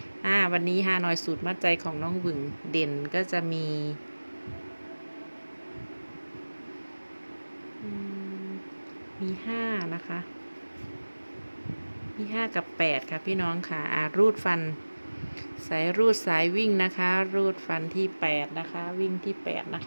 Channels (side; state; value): both; inverted; correlation -1.00